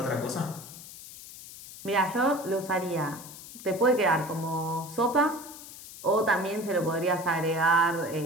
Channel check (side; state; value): left; noise; hiss, 15 dB below the sound